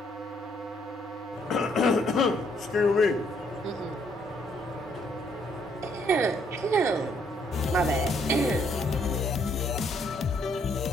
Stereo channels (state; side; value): normal; both; correlation 0.69